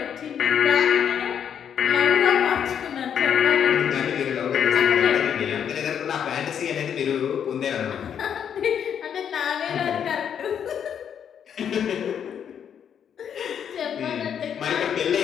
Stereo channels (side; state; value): right; quieter; 8.4 dB